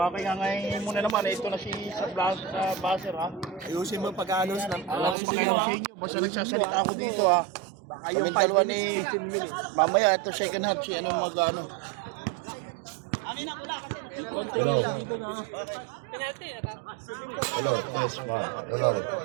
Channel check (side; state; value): left; drops out; at 5.2 s